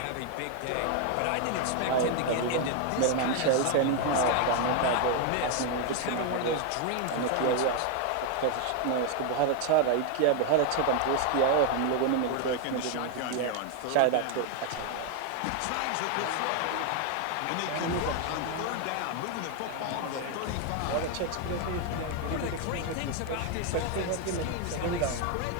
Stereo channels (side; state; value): both; different; correlation 0.01